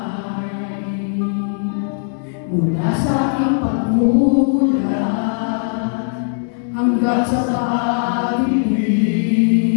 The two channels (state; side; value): silent; right; digital silence